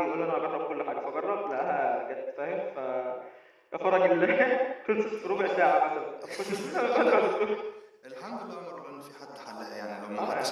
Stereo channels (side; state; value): both; identical; correlation 1.00